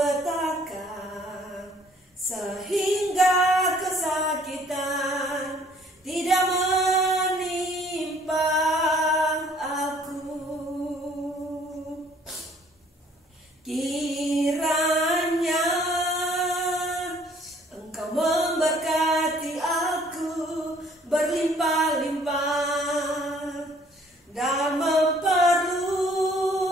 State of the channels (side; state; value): both; normal; correlation 0.59